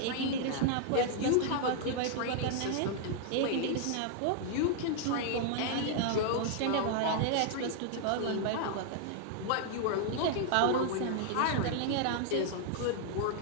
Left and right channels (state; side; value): different; both; correlation 0.00